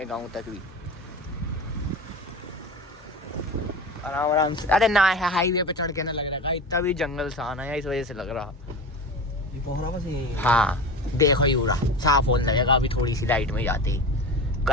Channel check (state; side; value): normal; both; correlation 0.30